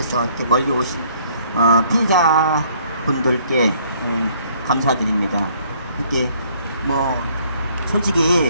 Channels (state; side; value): inverted; both; correlation -0.62